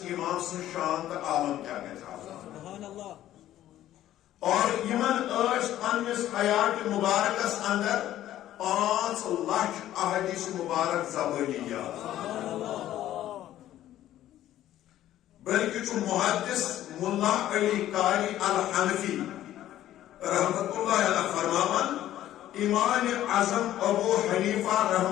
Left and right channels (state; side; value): quieter; right; 13.0 dB